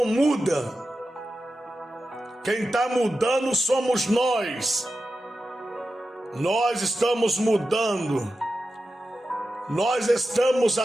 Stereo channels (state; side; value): normal; both; correlation 0.92